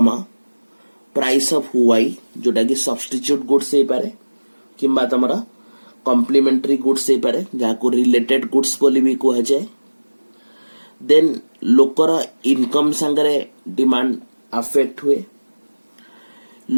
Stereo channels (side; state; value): both; inverted; correlation -1.00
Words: price of y जोटा कि substitute goods हे पारे किंबा तमरा complementary goods हे पारे जाको related goods बोली भी कहा जाए देन लोकर इनकम संगे डिमांड अफेक्ट हुए